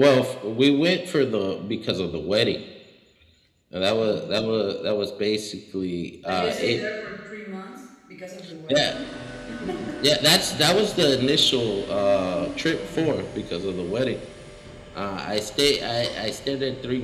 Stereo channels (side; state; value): both; identical; correlation 1.00